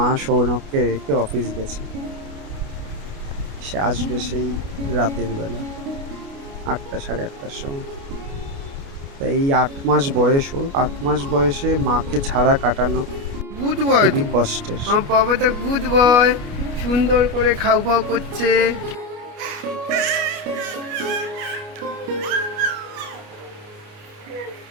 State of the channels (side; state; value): left; late; 29 ms